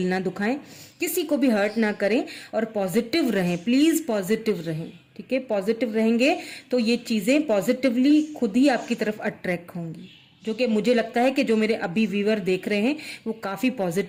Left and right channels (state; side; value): identical; both; correlation 1.00